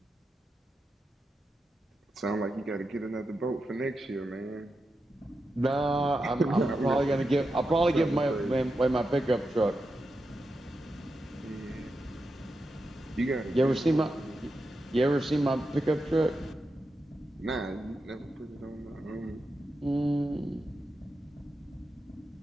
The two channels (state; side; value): normal; both; correlation 0.88